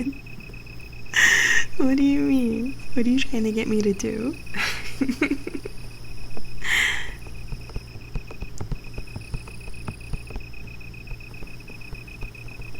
What do you mean? What are you trying to get me to do?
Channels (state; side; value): identical; both; correlation 1.00